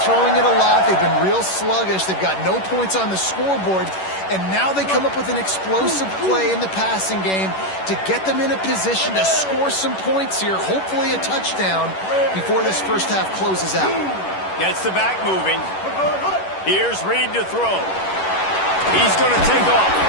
throwing it a lot. They've been real sluggish. They've got no points on the scoreboard. And now they come up with an explosive play in the passing game to get them in a position to score some points here, hopefully a touchdown, before this first half closes out. Gets the back moving. Here's Reed to throw. He's going to take off.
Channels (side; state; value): right; late; 11 ms